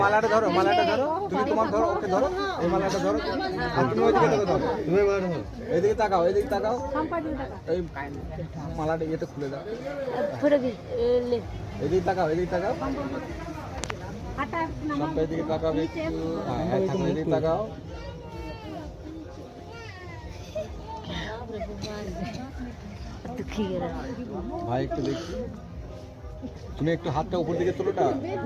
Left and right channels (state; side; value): identical; both; correlation 1.00